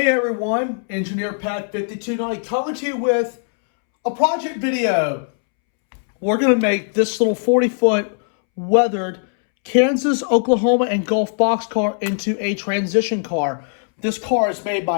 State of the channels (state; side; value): silent; right; 66 dB below the other